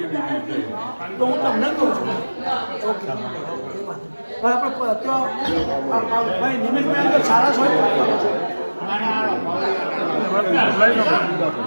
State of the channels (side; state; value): both; inverted; correlation -1.00